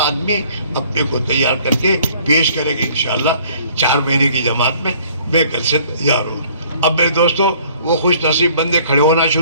اپنے کو تیار کر کے پیش کرے گا انشاءاللہ 4 مہینے کی جماعت میں، میں کل سے تیار ہوں۔ اب میرے دوستوں وہ خوش نصیب بندے کھڑے ہونا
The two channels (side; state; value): both; inverted; correlation -0.57